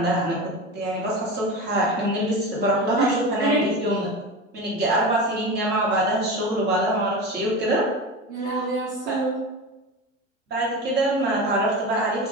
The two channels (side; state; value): both; normal; correlation 0.26